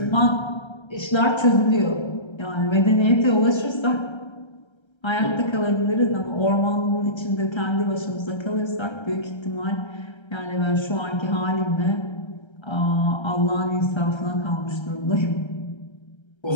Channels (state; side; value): late; right; 1.3 ms